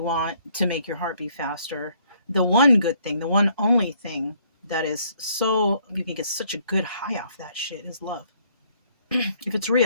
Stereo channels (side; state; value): both; inverted; correlation -0.65